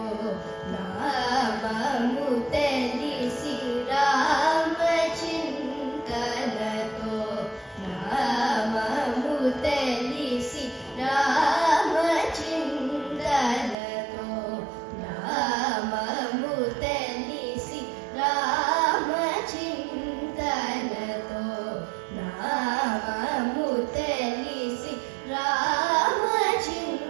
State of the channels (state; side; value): drops out; left; at 13.8 s